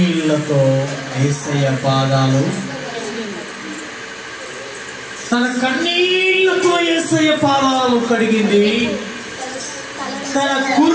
యేసయ్య పాదాలు, తన కన్నీళ్లతో యేసయ్య పాదాలు కడిగింది. తన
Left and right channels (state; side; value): identical; both; correlation 1.00